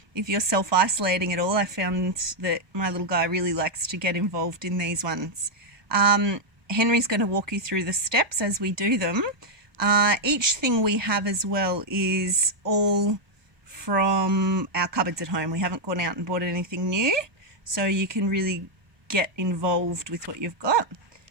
If you're self-isolating at all, I found that my little guy really likes to get involved in these ones. Henry's going to walk you through the steps as we do them. Each thing we have as well is all from our cupboards at home. We haven't gone out and bought anything new, so you can really get involved with what you've got.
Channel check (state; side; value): late; left; 1.2 ms